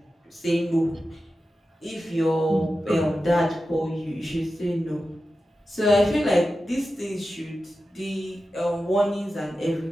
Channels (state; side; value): normal; both; correlation 0.92